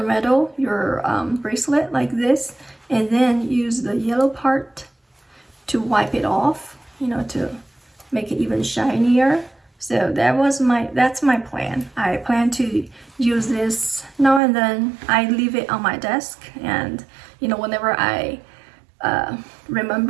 metal, your bracelet like this, and then use the yellow part to wipe it off, to make it even shinier. So that's my plan. I plan to use this now and then. I leave it on my desk, and whenever I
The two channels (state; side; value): drops out; left; at 14.4 s